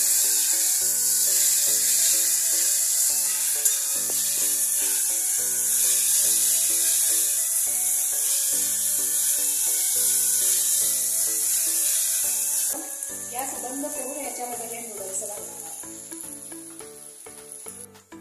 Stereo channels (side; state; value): both; identical; correlation 1.00